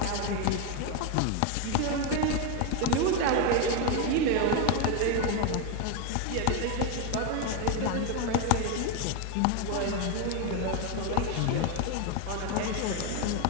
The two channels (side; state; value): both; different; correlation 0.01